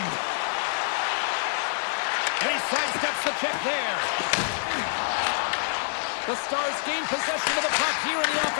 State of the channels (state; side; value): silent; right; digital silence